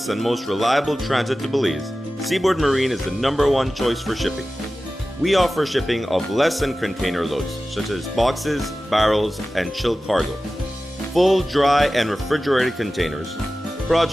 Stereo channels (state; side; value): normal; both; correlation 0.95